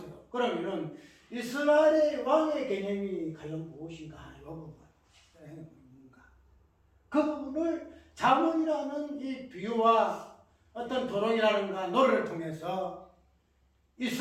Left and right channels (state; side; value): identical; both; correlation 1.00